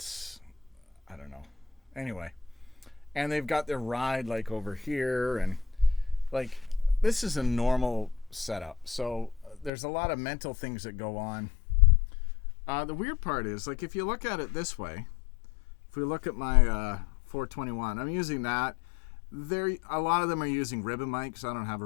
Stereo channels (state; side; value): drops out; right; at 9.7 s